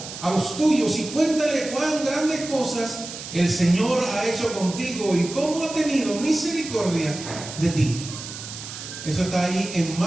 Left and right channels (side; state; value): right; noise; hiss, 11 dB below the sound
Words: a los tuyos, y cuéntale cuán grandes cosas el Señor ha hecho contigo y cómo ha tenido misericordia de ti. Eso está ahí en